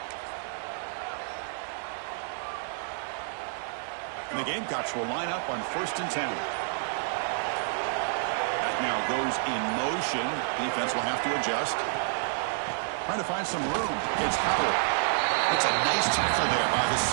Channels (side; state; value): left; silent; 58 dB below the other